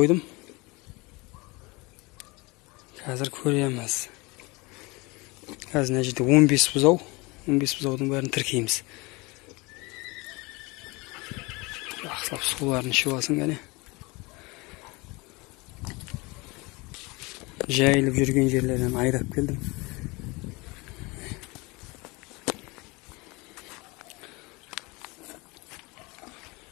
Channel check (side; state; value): right; quieter; 25.3 dB